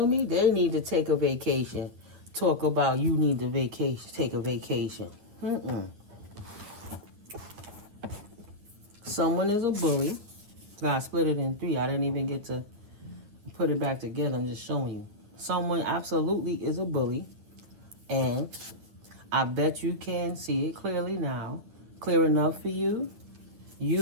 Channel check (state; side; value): late; left; 9.5 ms